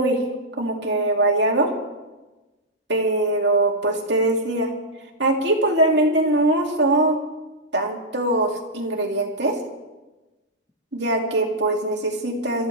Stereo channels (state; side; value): normal; both; correlation -0.09